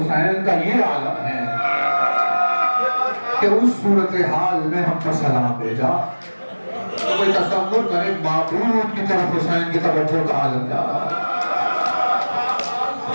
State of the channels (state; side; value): inverted; both; correlation -1.00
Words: کا یہ عالم ہے کہ اس صورتحال میں ہم پر سلام بھیجا، تو کوئی تصور کرے معبود کی طرف حسین کی توجہ کا عالم جا رہا